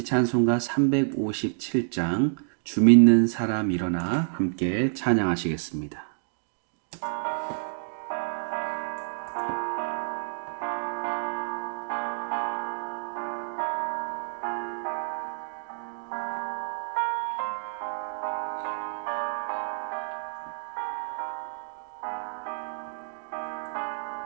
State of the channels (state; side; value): silent; left; digital silence